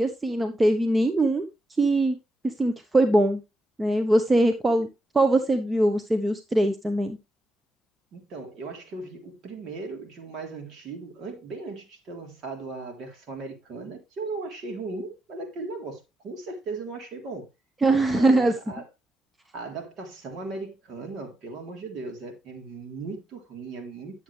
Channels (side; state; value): both; normal; correlation 0.86